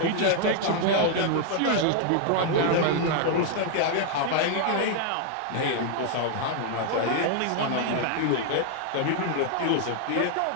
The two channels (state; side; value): different; both; correlation 0.00